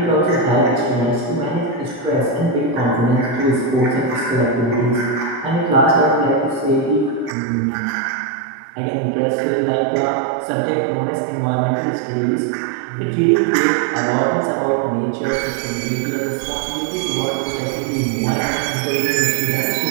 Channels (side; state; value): left; drops out; at 7.4 s